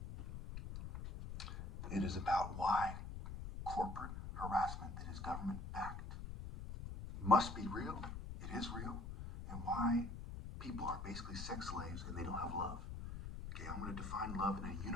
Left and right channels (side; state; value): left; noise; rumble, 7 dB below the sound